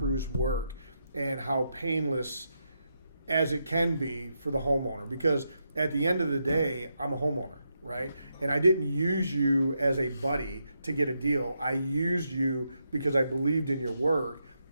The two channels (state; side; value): inverted; both; correlation -0.83